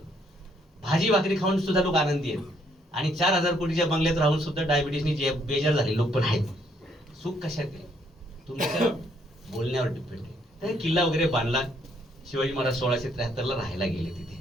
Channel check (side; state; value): both; normal; correlation 0.69